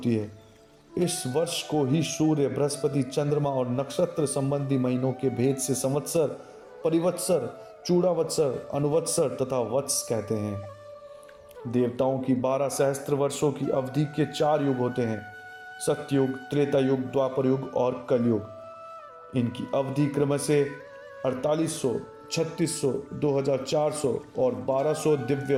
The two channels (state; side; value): identical; both; correlation 1.00